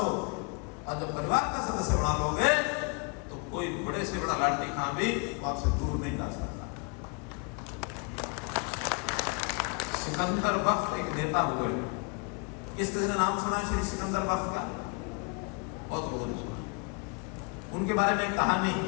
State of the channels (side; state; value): right; quieter; 32.3 dB